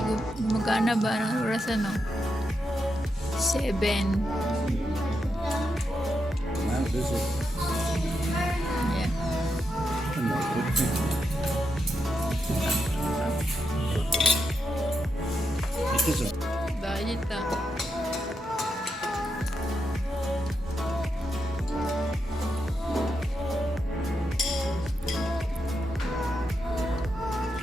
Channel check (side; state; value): both; normal; correlation 0.84